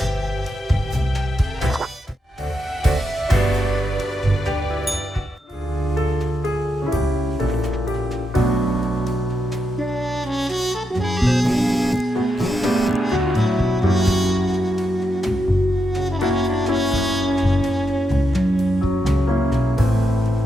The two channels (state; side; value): normal; both; correlation 0.84